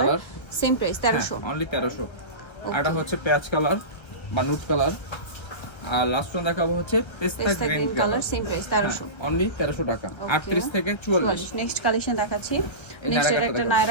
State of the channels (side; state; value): right; late; 1.3 ms